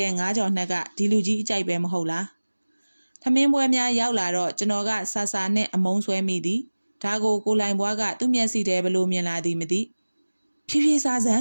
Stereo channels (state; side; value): inverted; both; correlation -1.00